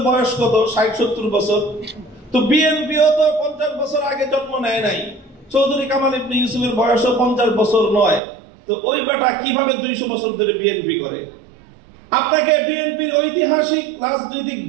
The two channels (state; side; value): drops out; left; at 8.2 s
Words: বয়স কত? 60-70 বছর। তো বিএনপিও তো 50 বছর আগে জন্ম নেয় নাই, চৌধুরী কামাল ইবনে ইউসুফের বয়সও 50 বছর নয়। তো ওই বেটা কিভাবে 200 বছর ধরে বিএনপি করে? আপনাকে বিএনপির ঐতিহাসিক রাজনৈতিক